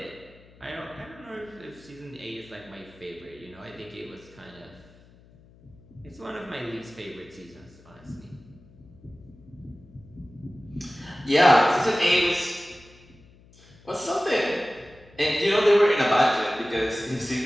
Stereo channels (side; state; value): left; noise; hum, 26 dB below the sound